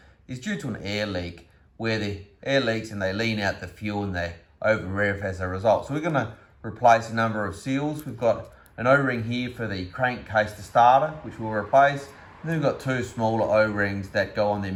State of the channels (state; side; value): identical; both; correlation 1.00